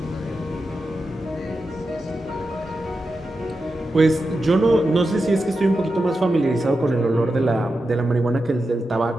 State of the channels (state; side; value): normal; both; correlation 0.90